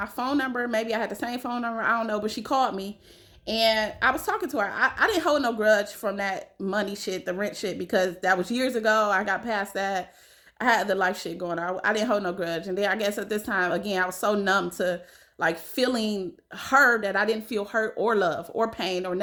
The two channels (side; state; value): both; identical; correlation 1.00